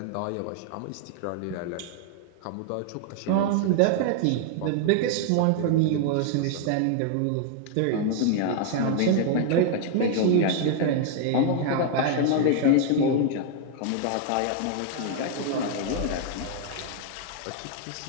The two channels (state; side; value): different; both; correlation 0.00